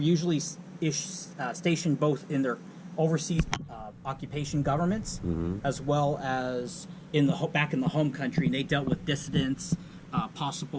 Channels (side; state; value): both; identical; correlation 1.00